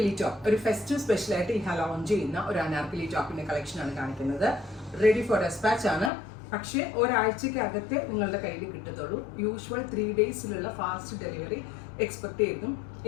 ടോപ്പ്, ഒരു ഫെസ്റ്റീവ് സ്പെഷ്യൽ ആയിട്ട് ഇഹാ ലോഞ്ച് ചെയ്യുന്ന ഒരു അനാർക്കലി ടോപ്പിന്റെ കളക്ഷൻ ആണ് കാണിക്കുന്നത്. റെഡി ഫോർ ഡെസ്പാച്ച് ആണ്, പക്ഷേ ഒരാഴ്ചക്കകത്തെ നിങ്ങളുടെ കയ്യിൽ കിട്ടത്തുള്ളൂ. യൂഷ്വൽ 3 ഡേയ്സിലുള്ള ഫാസ്റ്റ് ഡെലിവറി എക്സ്പെക്ട് ചെയ്തും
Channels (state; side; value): drops out; right; at 6.1 s